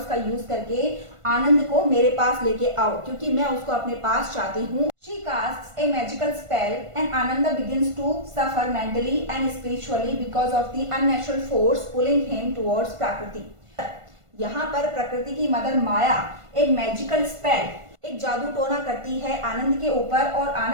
का यूज करके आनंद को मेरे पास लेके आओ, क्योंकि मैं उसको अपने पास चाहती हूँ। She casts a magical spell and Ananda begins to suffer mentally and spiritually because of the unnatural force pulling him towards Prakriti. यहाँ पर प्रकृति की मदर माया एक मैजिकल स्पेल, एक जादू टोना करती है आनंद के ऊपर और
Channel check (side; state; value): left; late; 1.5 ms